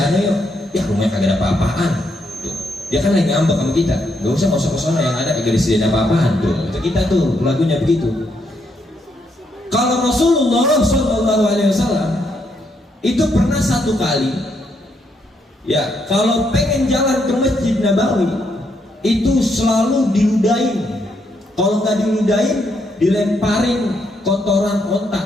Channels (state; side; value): normal; both; correlation 0.76